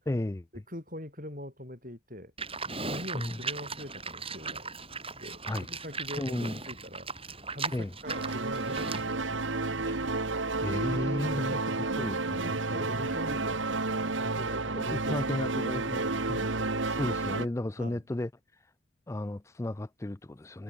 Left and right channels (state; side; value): normal; both; correlation 0.24